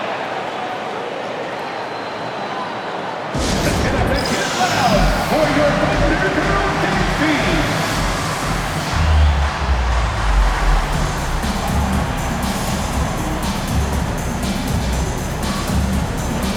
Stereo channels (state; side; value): identical; both; correlation 1.00